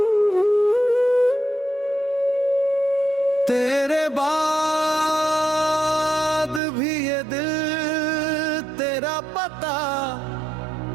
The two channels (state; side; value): drops out; left; at 6.6 s